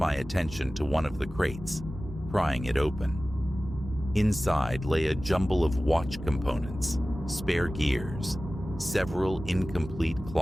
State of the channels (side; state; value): both; normal; correlation 0.96